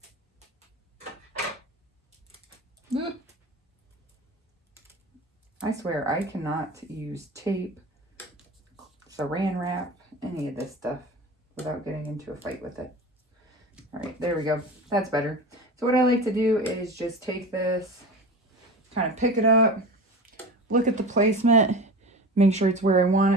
I swear I cannot use tape, saran wrap, any of this stuff without getting into a fight with it. All right, there we go. That's better. So what I like to do is just take this, kind of pick it up, look at the placement, make sure it's where I want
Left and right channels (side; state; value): both; normal; correlation 0.31